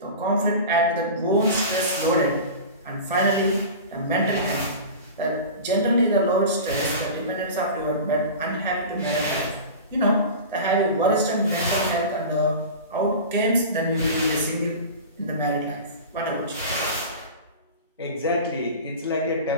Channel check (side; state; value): both; inverted; correlation -0.33